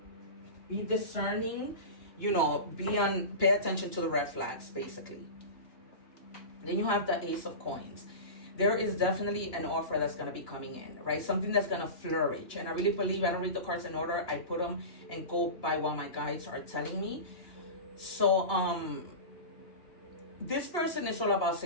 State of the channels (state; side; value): late; right; 2.9 ms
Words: Be discerning, pay attention to the red flags, basically. Then you have the Ace of Coins. There is definitely an offer that's going to be coming in, right? Something that's going to flourish. And I really believe, I don't read the cards in order. I put them and go by what my guides are telling me. So, this person is all about